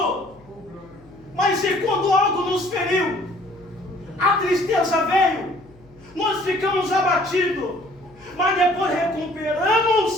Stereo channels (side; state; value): left; noise; hum, 26 dB below the sound